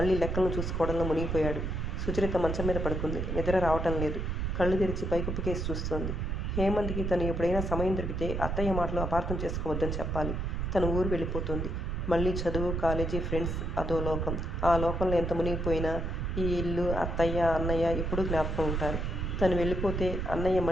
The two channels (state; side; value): noise; right; rumble, 1 dB below the sound